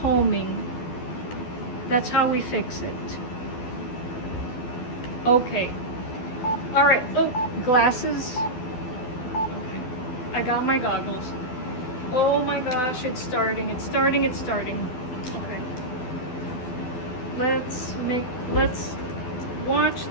That's how we fix it. Okay. All right. Oh, glasses. Okay. I got my goggles. Oh my gosh, it's starting. It's starting. It's starting. Okay. Let's watch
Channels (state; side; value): late; right; 12 ms